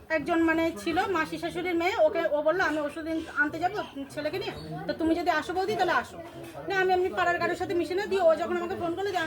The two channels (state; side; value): identical; both; correlation 1.00